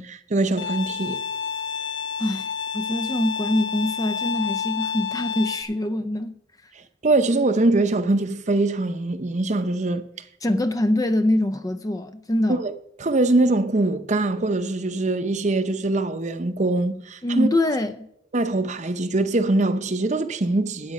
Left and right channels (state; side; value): normal; both; correlation 0.61